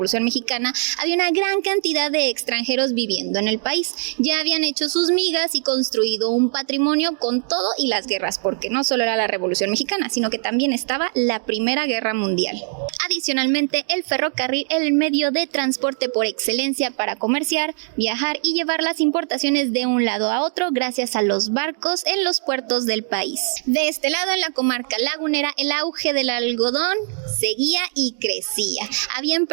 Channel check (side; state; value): left; silent; 63 dB below the other